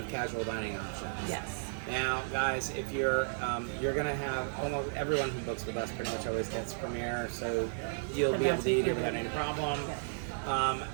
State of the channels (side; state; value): left; silent; 55 dB below the other